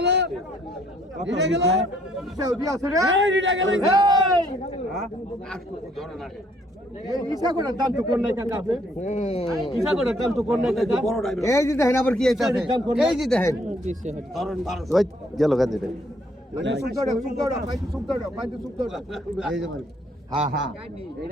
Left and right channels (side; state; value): both; normal; correlation 0.66